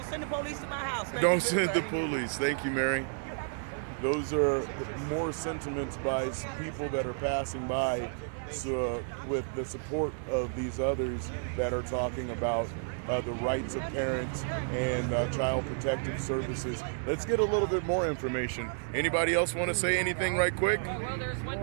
send the police to my house. Thank Don't you, send the everybody. police. Thank you, Mary. Those are more sentiments by people that are passing by, so with the support of these others that are talking about the rights of parents and child protective services. Let's get a little bit more information. Anybody else want to say anything right quick? Well, there's one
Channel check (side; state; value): left; silent; digital silence